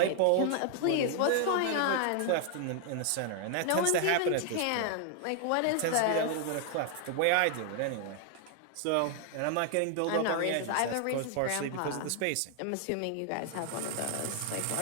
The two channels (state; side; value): different; both; correlation 0.00